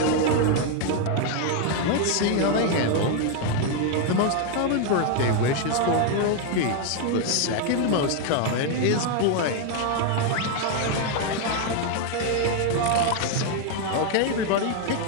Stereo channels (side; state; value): both; different; correlation 0.01